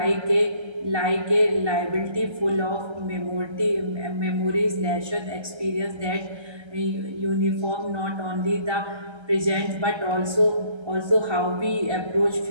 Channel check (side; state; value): left; late; 1.3 ms